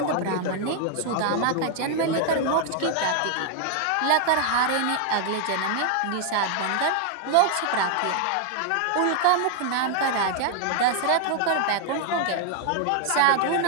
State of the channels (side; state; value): both; different; correlation 0.00